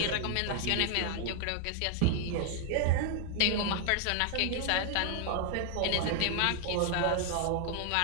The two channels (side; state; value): both; different; correlation 0.00